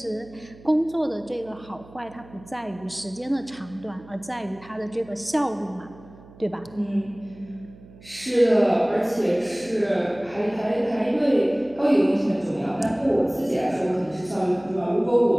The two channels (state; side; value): noise; right; hum, 21 dB below the sound